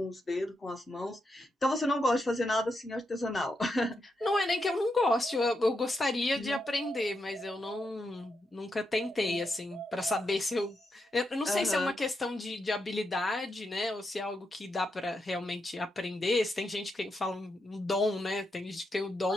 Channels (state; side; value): normal; both; correlation 0.84